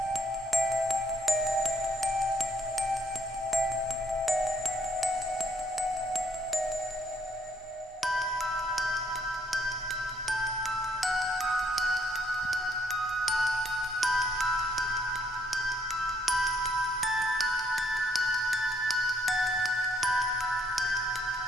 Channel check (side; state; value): both; normal; correlation 0.68